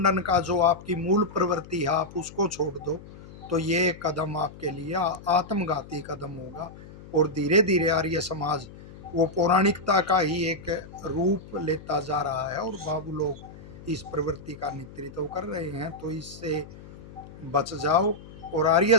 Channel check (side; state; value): left; noise; hum, 17 dB below the sound